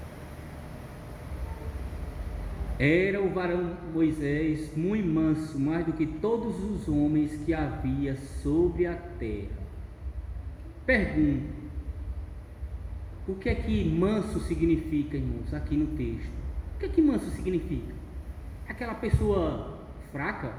Era o varão Moisés muito manso, mais do que todos os homens que havia sobre a terra. Pergunto: o que é que manso significa, irmãos, aqui no texto? O que é que manso significa? Aquela pessoa fraca?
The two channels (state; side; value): identical; both; correlation 1.00